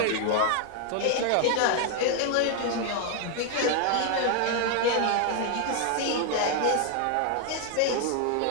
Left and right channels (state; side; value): different; both; correlation 0.00